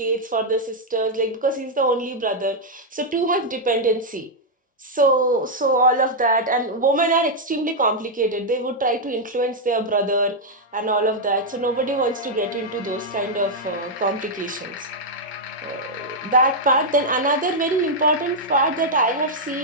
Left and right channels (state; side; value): normal; both; correlation -0.03